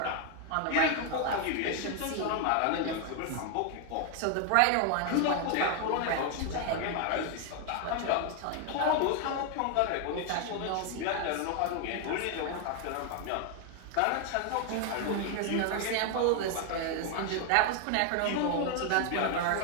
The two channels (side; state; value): both; different; correlation 0.01